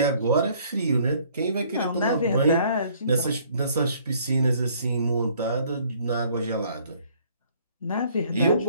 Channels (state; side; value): inverted; both; correlation -0.60